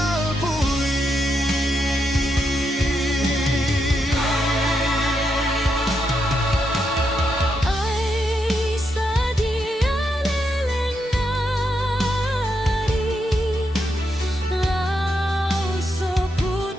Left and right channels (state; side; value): normal; both; correlation 0.82